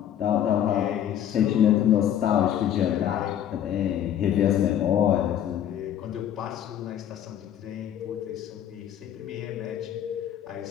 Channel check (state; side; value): quieter; right; 10.4 dB